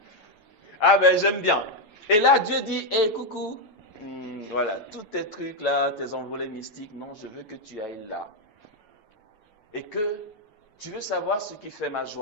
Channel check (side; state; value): right; late; 9.3 ms